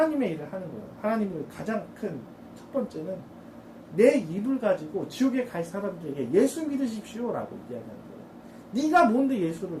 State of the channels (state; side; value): identical; both; correlation 1.00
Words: 일을 하는 거예요. 하나님을 가장 큰 첫 번째는 내 입을 가지고 지옥에 갈 사람들에게 예수 믿으십시오라고 이야기하는 거예요. 네가 뭔데 예수를